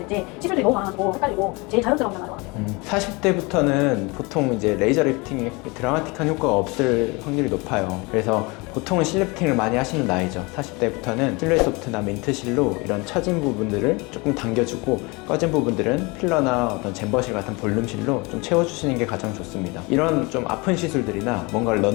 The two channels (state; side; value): quieter; right; 26.7 dB